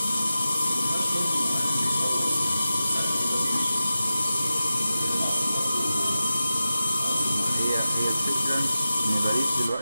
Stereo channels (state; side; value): inverted; both; correlation -0.94